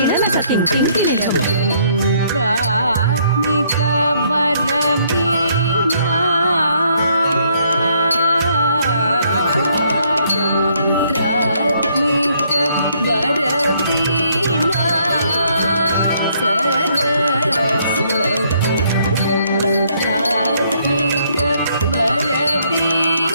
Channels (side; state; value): both; inverted; correlation -0.68